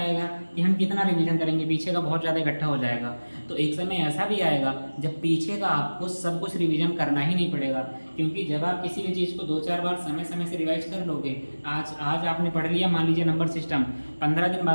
कि हम कितना रिवीजन करेंगे, पीछे का बहुत ज़्यादा इकट्ठा हो जाएगा। तो एक समय ऐसा भी आएगा जब पीछे का आपको सब कुछ रिवीजन करना ही नहीं पड़ेगा, क्योंकि जब आप किसी भी चीज़ को 2-4 बार समय समय से रिवाइज कर लोगे, आज आपने पढ़ लिया, मान लीजिए नंबर सिस्टम, 15 दिन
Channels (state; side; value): inverted; both; correlation -1.00